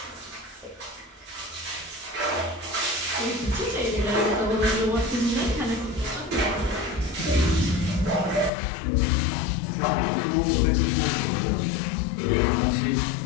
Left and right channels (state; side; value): drops out; right; at 8.5 s